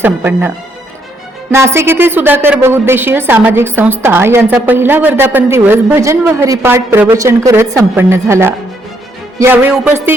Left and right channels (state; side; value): normal; both; correlation 0.73